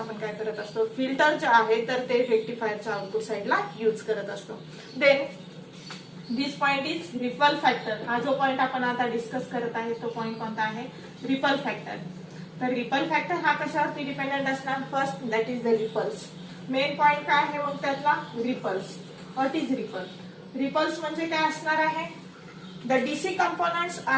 काय करत असतो, फिल्टर जे आहे तर ते रेक्टिफायरच्या आउटपुट साइडला यूज करत असतो. Then this point is ripple factor. हा जो पॉइंट आपण आता डिस्कस करत आहे तो पॉइंट कोणता आहे, रिपल फॅक्टर. तर रिपल फॅक्टर हा कशावरती डिपेंडेंट असणार? First that is the ripples. Main point काय आहे मग त्यातला? Ripples. What is ripple? Ripples म्हणजे काय असणार आहे? The DC components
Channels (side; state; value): both; identical; correlation 1.00